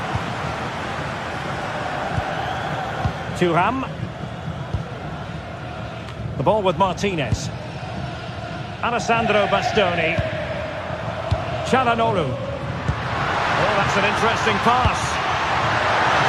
Thuram. The ball with Martinez. Alessandro Bastoni. Çalhanoğlu. Oh, that's an interesting pass.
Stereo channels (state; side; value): identical; both; correlation 1.00